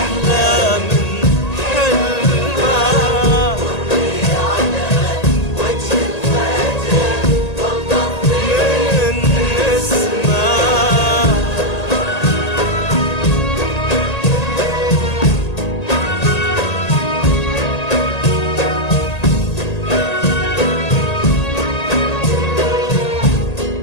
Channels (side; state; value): right; late; 1.8 ms